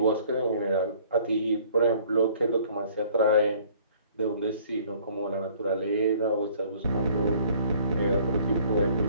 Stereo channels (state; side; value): inverted; both; correlation -0.56